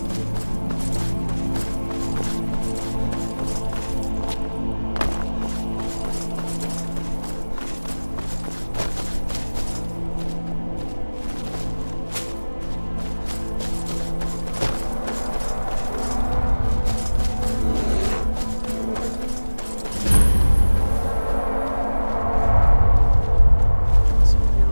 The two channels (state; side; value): inverted; both; correlation -1.00